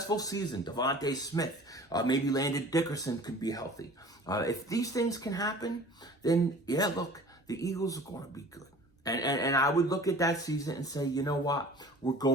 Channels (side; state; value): both; normal; correlation 0.45